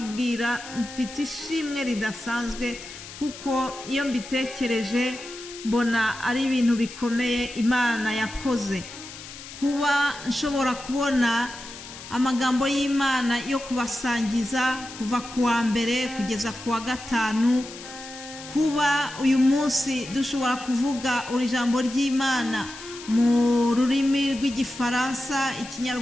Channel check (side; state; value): left; noise; hiss, 14 dB below the sound